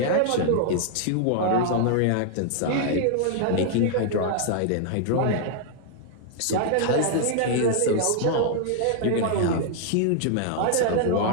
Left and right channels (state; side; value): different; both; correlation 0.00